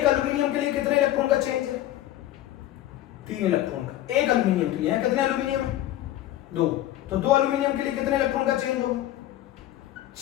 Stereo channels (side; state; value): right; quieter; 13.8 dB